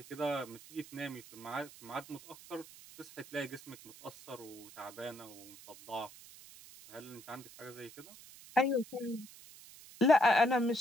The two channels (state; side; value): noise; right; hiss, 18 dB below the sound